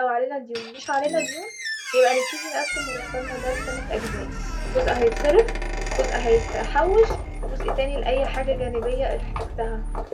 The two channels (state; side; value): identical; both; correlation 1.00